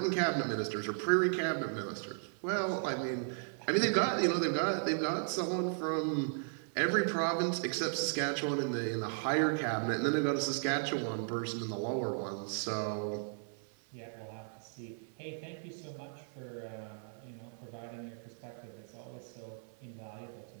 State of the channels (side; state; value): left; silent; 54 dB below the other